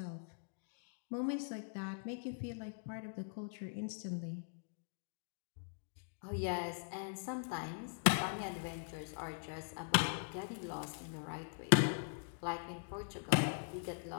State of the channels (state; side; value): silent; right; digital silence